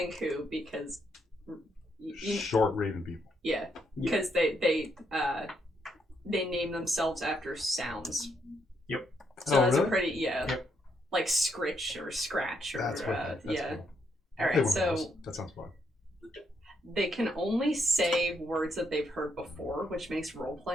because Short raven people. yeah, because they name themselves after sounds. So that's really? a pretty Yep. like scritch or scratch or That's what. That's yeah. cool. All I'll play right, one of so those. That sounds fun. they can only say words that they've heard before, which makes role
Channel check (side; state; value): both; normal; correlation 0.76